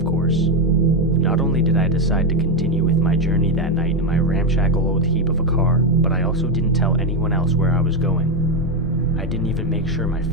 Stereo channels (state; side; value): normal; both; correlation 0.08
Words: course. Not only did I decide to continue with my journey that night in my ramshackle old heap of a car, but I also didn't tell anyone else where I was going. I didn't even make sure my